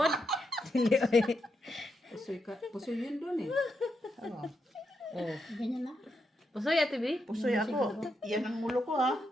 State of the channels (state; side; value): normal; both; correlation 0.83